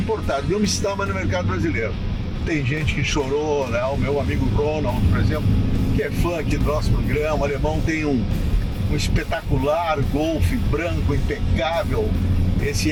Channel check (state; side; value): identical; both; correlation 1.00